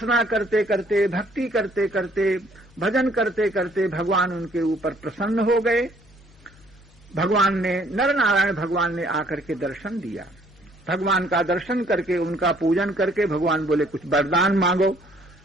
करते करते, भक्ति करते करते, भजन करते करते भगवान उनके ऊपर प्रसन्न हो गए। भगवान ने, नर नारायण भगवान ने आकर के दर्शन दिया। भगवान का दर्शन करके, उनका पूजन करके भगवान बोले कुछ वरदान मांगो।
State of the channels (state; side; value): normal; both; correlation 0.63